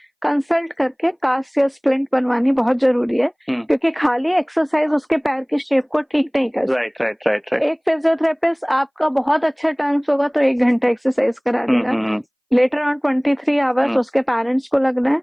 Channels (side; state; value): both; identical; correlation 1.00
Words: कंसल्ट करके कास्ट या स्प्लिंट बनवानी बहुत जरूरी है, क्योंकि खाली एक्सरसाइज उसके पैर की शेप को ठीक नहीं कर सकती। राइट। एक फिजियोथेरेपिस्ट आपका बहुत अच्छा टर्म्स होगा तो 1 घंटा एक्सरसाइज करा देगा, लेटर ऑन 23 आवर्स उसके पेरेंट्स को लगना है,